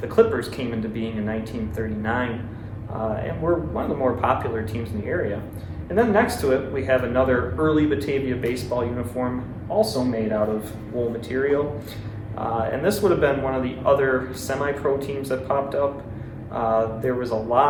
the Clippers came into being in 1939, and were one of the more popular teams in the area. And then next to it, we have another early Batavia baseball uniform, also made out of wool material. And this would have been one of the other semi-pro teams that popped up. There was a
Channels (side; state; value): both; identical; correlation 1.00